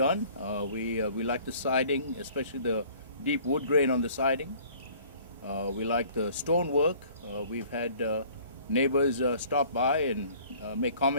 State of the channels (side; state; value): both; inverted; correlation -0.53